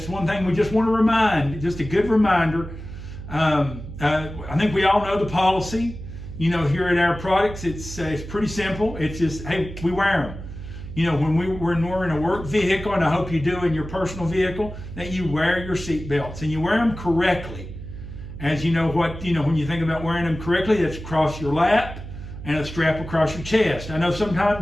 one thing we just want to remind, just a good reminder. I think we all know the policy, here at our products. It's pretty simple. It's just, hey, we wear them. When we're in a work vehicle, and I hope you do in your personal vehicle, that you wear your seat belts and you wear them correctly. As you know when you think about wearing them correctly, it's across your lap and a strap across your chest. I know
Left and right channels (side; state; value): right; noise; hum, 11 dB below the sound